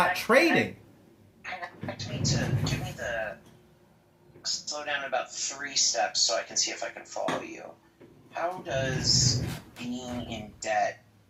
trading. Give me the slow down about 3 steps so I can see if I can follow you. How does being in debt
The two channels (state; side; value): identical; both; correlation 1.00